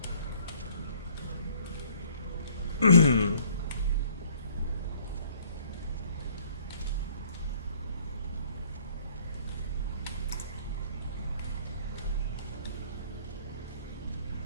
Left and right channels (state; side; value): inverted; both; correlation -0.59